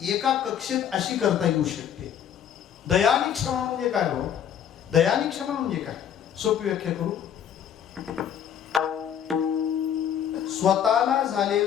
एका कक्षेत अशी करता येऊ शकते. दया आणि क्षमा म्हणजे काय हो? दया आणि क्षमा म्हणजे काय? सोपी व्याख्या करू. स्वतःला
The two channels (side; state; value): right; quieter; 9.2 dB